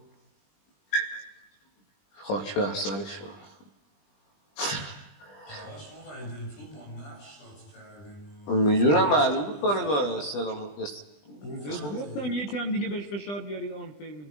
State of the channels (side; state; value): right; late; 20 ms